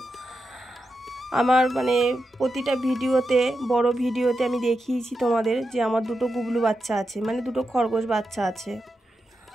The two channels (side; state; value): both; normal; correlation 0.88